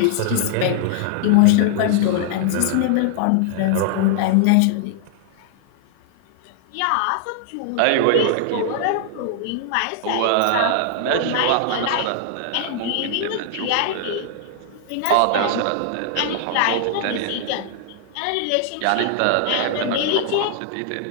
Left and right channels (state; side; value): different; both; correlation -0.01